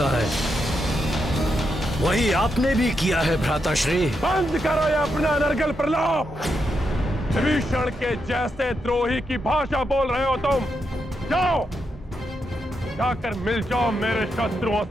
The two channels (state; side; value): normal; both; correlation 0.83